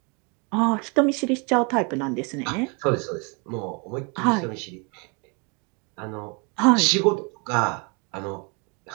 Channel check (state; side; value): quieter; left; 31.7 dB